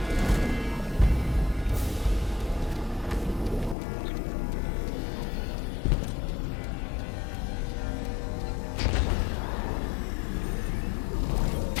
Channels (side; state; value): right; drops out; at 3.8 s